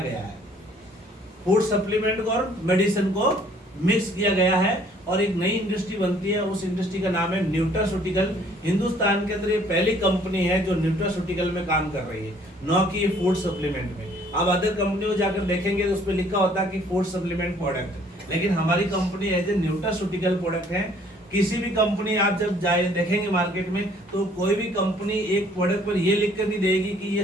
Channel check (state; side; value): normal; both; correlation 0.59